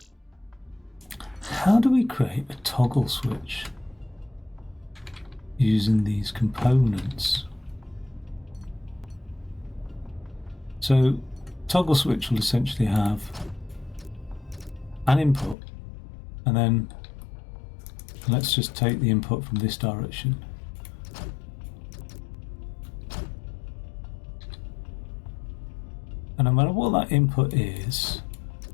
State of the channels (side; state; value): right; drops out; at 15.6 s